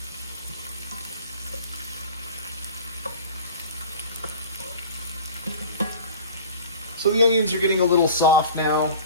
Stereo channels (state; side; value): inverted; both; correlation -0.41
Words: So the onions are getting a little soft now.